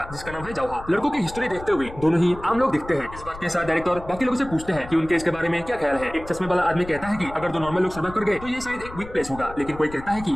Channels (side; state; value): left; noise; rumble, 15 dB below the sound